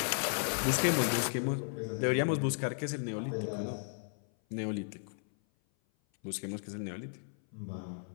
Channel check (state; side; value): silent; right; 55 dB below the other